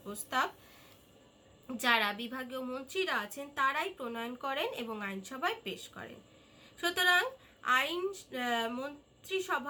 প্রস্তাব যারা বিভাগীয় মন্ত্রীরা আছেন তারাই প্রণয়ন করেন এবং আইনসভায় পেশ করেন। সুতরাং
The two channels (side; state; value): both; identical; correlation 1.00